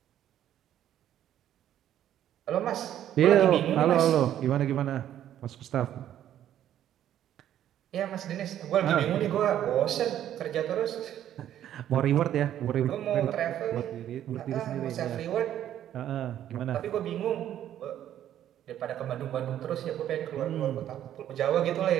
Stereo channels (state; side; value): quieter; left; 11.2 dB